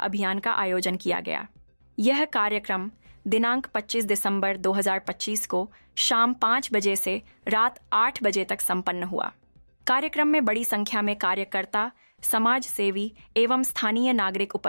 का आयोजन किया गया। यह कार्यक्रम दिनांक 25 दिसंबर 2025 को शाम 5 बजे से रात 8 बजे तक संपन्न हुआ। कार्यक्रम में बड़ी संख्या में कार्यकर्ता, समाज सेवी एवं स्थानीय नागरिक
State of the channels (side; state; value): both; inverted; correlation -1.00